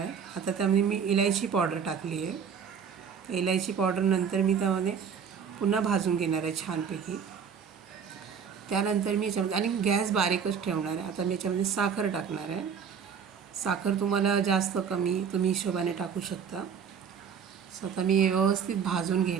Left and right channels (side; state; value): left; quieter; 7.0 dB